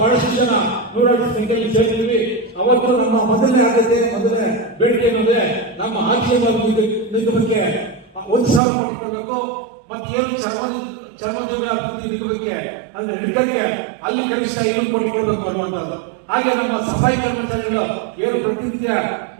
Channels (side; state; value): left; drops out; at 8.6 s